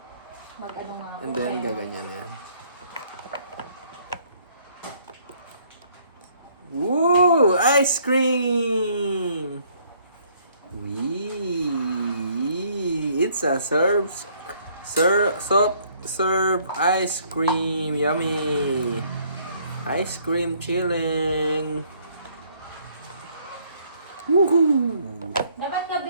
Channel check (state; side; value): inverted; both; correlation -0.63